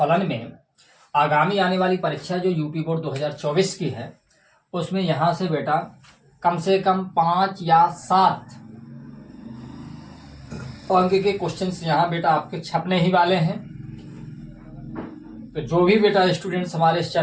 में आगामी आने वाली परीक्षा जो यूपी बोर्ड 2024 की है, उसमें यहाँ से बेटा कम से कम 5 या 7 अंक के क्वेश्चंस यहाँ बेटा आपके छपने ही वाले हैं। तो जो भी बेटा स्टूडेंट्स हमारे इस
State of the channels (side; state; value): both; identical; correlation 1.00